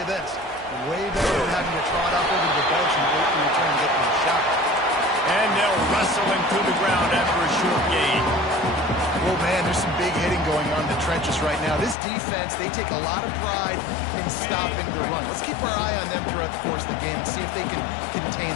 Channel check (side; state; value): right; drops out; at 12.0 s